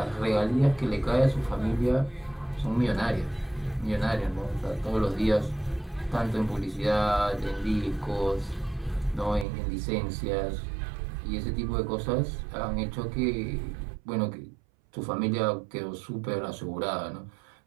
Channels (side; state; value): left; drops out; at 9.5 s